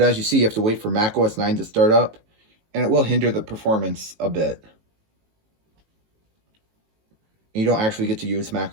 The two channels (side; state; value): left; late; 18 ms